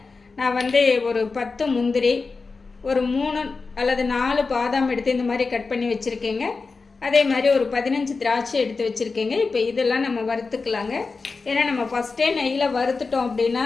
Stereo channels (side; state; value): right; quieter; 4.3 dB